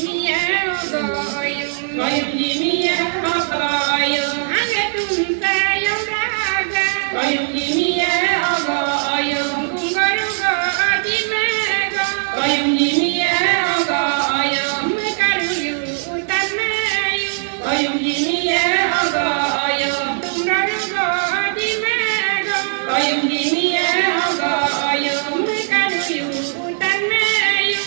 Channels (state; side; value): silent; left; digital silence